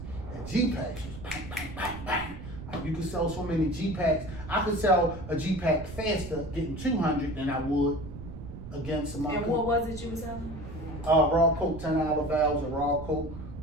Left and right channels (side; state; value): right; noise; rumble, 11 dB below the sound